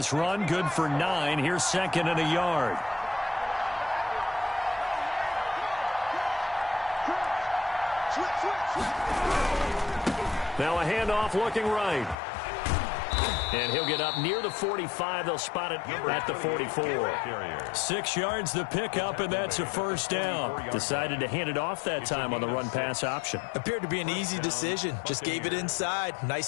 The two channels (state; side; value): drops out; right; at 12.2 s